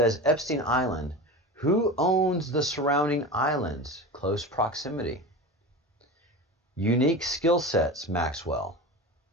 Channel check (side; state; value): both; normal; correlation 0.29